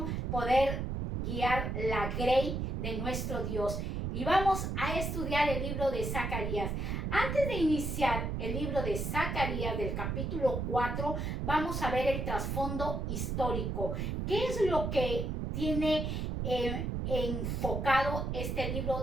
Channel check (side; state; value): right; noise; rumble, 2 dB below the sound